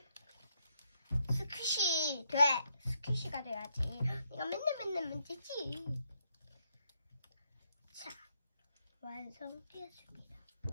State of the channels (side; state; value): both; inverted; correlation -0.76